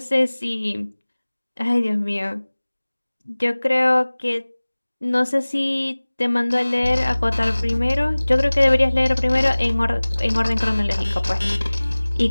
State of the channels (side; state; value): both; inverted; correlation -1.00